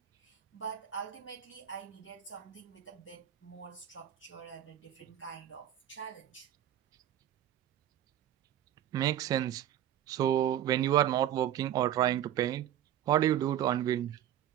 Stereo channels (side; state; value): left; quieter; 11.6 dB